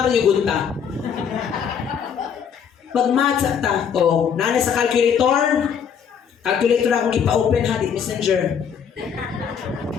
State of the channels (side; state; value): right; quieter; 7.5 dB